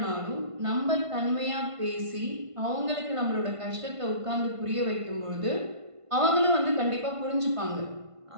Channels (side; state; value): left; late; 1.5 ms